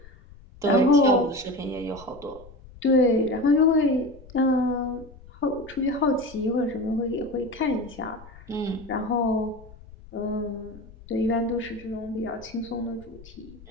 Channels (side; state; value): left; noise; rumble, 20 dB below the sound